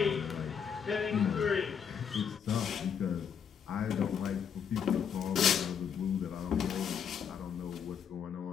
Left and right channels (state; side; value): quieter; right; 7.4 dB